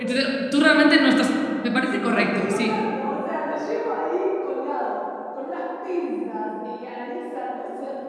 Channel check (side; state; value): both; identical; correlation 1.00